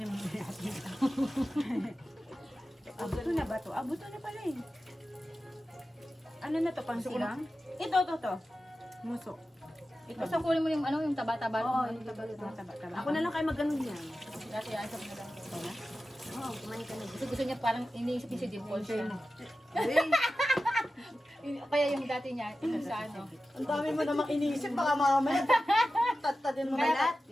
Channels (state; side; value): normal; both; correlation 0.93